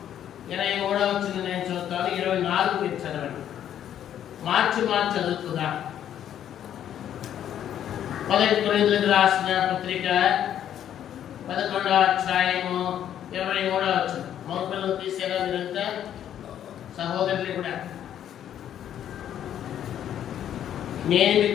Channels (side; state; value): right; quieter; 10.4 dB